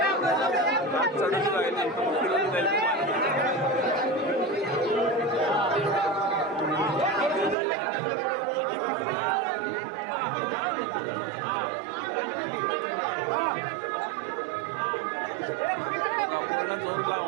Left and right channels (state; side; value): drops out; left; at 7.6 s